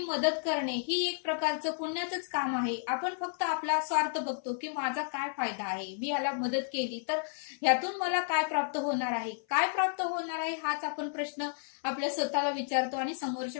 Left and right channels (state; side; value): silent; right; 56 dB below the other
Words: करणे ही एक प्रकारचं पुण्याचंच काम आहे. आपण फक्त आपला स्वार्थ बघतो की माझा काय फायदा आहे, मी याला मदत केली तर ह्यातून मला काय प्राप्त होणार आहे, काय प्राप्त होणार आहे हाच आपण प्रश्न आपल्या स्वतःला विचारतो आणि